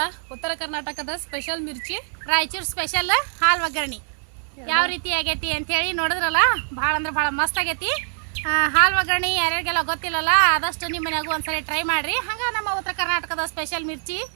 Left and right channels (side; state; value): left; silent; digital silence